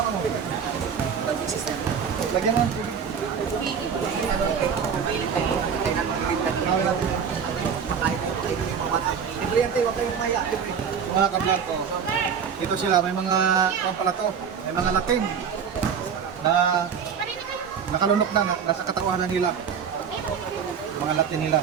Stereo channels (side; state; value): left; quieter; 7.0 dB